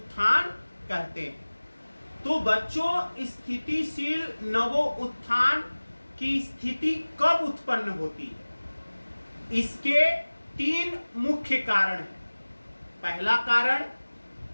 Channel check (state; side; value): inverted; both; correlation -1.00